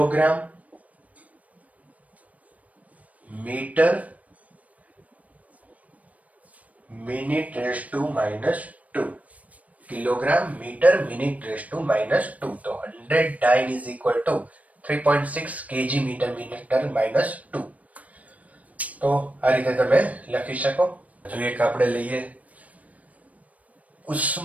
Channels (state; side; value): late; left; 0.069 ms